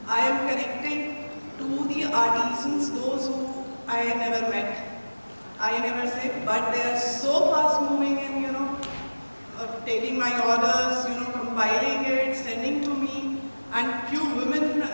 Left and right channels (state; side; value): inverted; both; correlation -1.00